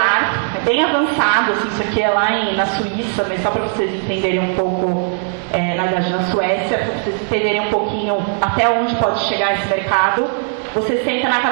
é bem avançado, assim, isso aqui é lá na Suíça, mas só para vocês entenderem um pouco, na verdade na Suécia, para vocês entenderem um pouquinho até onde pode chegar esse mercado. Você senta na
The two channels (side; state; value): left; silent; 57 dB below the other